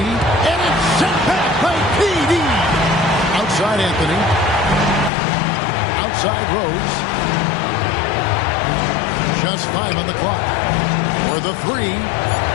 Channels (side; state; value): right; drops out; at 5.1 s